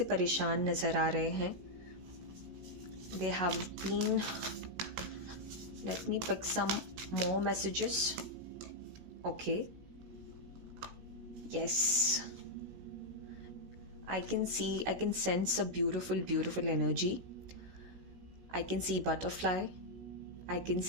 परेशान नजर आ रहे हैं. They have been, let me pick some more messages. Okay, yes, I can sense a beautiful energy. I can see butterfly. I can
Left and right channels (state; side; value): late; left; 16 ms